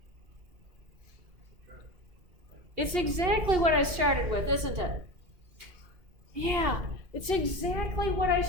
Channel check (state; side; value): late; left; 2.8 ms